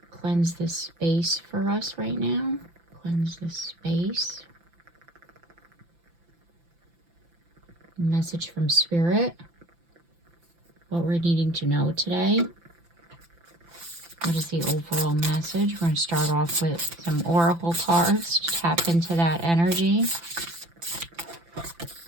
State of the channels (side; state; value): left; late; 5.9 ms